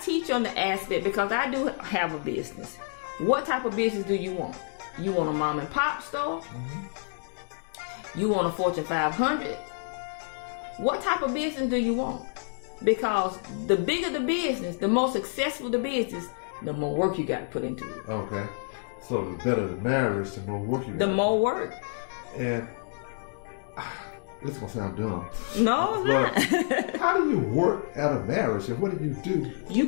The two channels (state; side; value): silent; right; 59 dB below the other